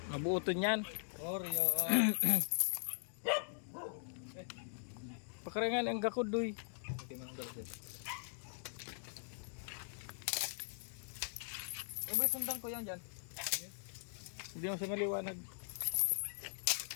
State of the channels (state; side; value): silent; right; digital silence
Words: Mabuoton yan. Oreo. Pakarangan ang gakudoy. Okay, manong sir. Ba sundan ko yan dyan. Hindi mo siya maliwanag.